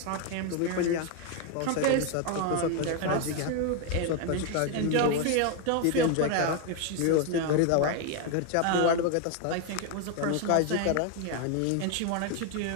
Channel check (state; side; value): different; both; correlation 0.01